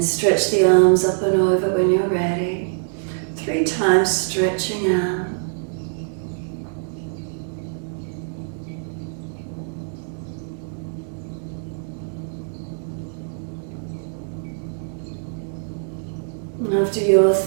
stretch the arms up and over when you're ready. 3 times stretching out. And After your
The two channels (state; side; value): silent; left; 63 dB below the other